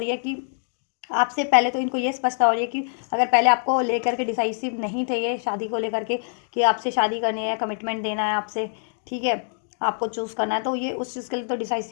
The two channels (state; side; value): silent; right; digital silence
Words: है कि आपसे पहले तो इनको ये स्पष्टता हो रही है कि अगर पहले आपको लेकर के डिसाइसिव नहीं थे ये शादी को लेकर के कि आपसे शादी करनी है, कमिटमेंट देना है आपसे, ठीक है, आपको चूज़ करना है, तो ये उस चीज़ के लिए तो